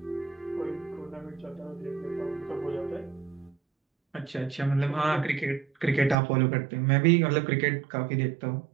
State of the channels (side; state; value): left; drops out; at 6.2 s